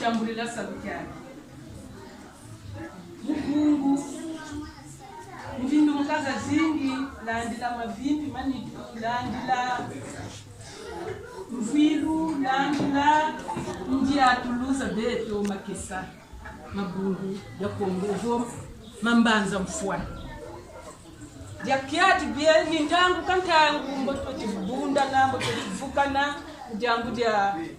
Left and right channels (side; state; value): both; identical; correlation 1.00